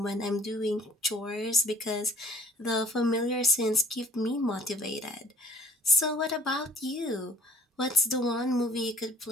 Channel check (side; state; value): both; normal; correlation 0.52